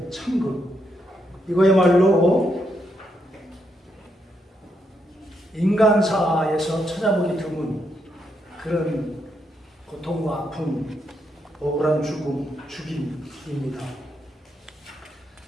참극, 이거야말로 인간사에서 찾아보기 드문 그런 고통과 아픔, 억울한 죽임입니다.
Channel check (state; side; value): normal; both; correlation 0.79